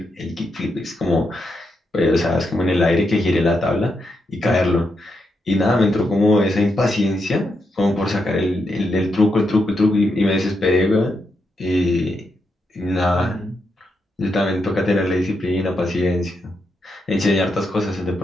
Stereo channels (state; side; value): normal; both; correlation 0.83